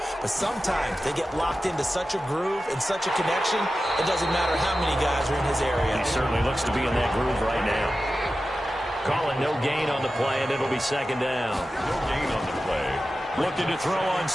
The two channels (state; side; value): normal; both; correlation 0.93